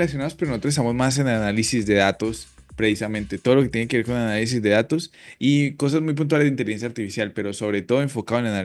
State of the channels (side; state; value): both; identical; correlation 1.00